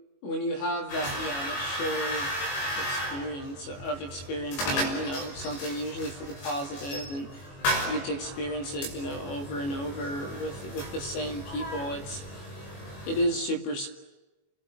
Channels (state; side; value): late; right; 22 ms